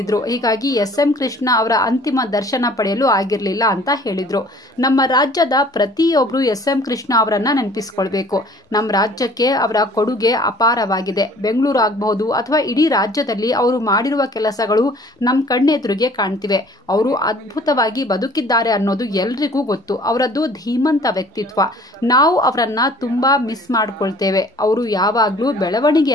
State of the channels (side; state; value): both; normal; correlation 0.52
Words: ಹೀಗಾಗಿ ಎಸ್.ಎಂ. ಕೃಷ್ಣ ಅವರ ಅಂತಿಮ ದರ್ಶನ ಪಡೆಯಲು ಆಗಿರಲಿಲ್ಲ ಅಂತ ಹೇಳಿದ್ರು. ನಮ್ಮ ರಾಜ್ಯದ ಪ್ರತಿಯೊಬ್ಬರು ಎಸ್.ಎಂ. ಕೃಷ್ಣ ಅವರನ್ನ ನೆನಪಿಸಿಕೊಳ್ಬೇಕು. ನಮ್ಮ ರಾಜ್ಯಕ್ಕೆ ಅವರ ಕೊಡುಗೆ ಅಪಾರ. ಬೆಂಗಳೂರು ಆಗಬಹುದು ಅಥವಾ ಇಡೀ ರಾಜ್ಯದಲ್ಲಿ ಅವರು ಮಾಡಿರುವ ಕೆಲಸಗಳು ನಮ್ಮ ಕಣ್ಣೆದುರಿಗೆ ಕಾಣ್ತಿವೆ. ಅವರು ಅದ್ಭುತವಾಗಿ ಬದುಕಿದ್ದಾರೆ ಅನ್ನೋದು ಎಲ್ರಿಗೂ ಗೊತ್ತು. ಅವರದ್ದು ಧೀಮಂತ ವ್ಯಕ್ತಿತ್ವ. ನಾವು ಅವರನ್ನ ತುಂಬಾ ಮಿಸ್ ಮಾಡ್ಕೊಳ್ತೇವೆ. ಅವರು ಯಾವಾಗ್ಲೂ